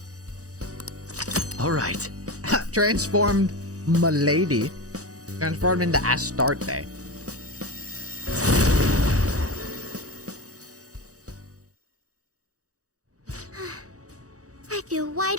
All right. Transformed Milady. Transformed into Astarte. I feel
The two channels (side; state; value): left; late; 0.66 ms